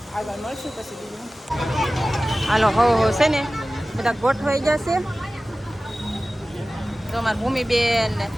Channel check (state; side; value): normal; both; correlation 0.96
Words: આગળ મળશું પછી બીજું. હાલો હો છે ને બધા ગોઠવાઈ જશે. તો મારી ભૂમિબેન ને